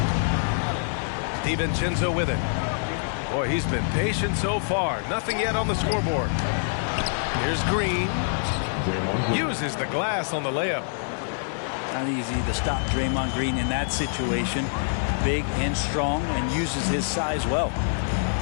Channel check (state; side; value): silent; right; digital silence